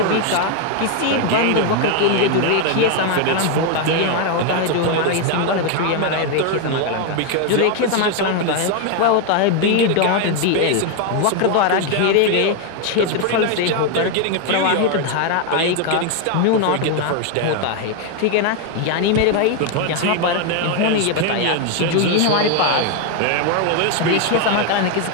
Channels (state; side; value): different; both; correlation 0.01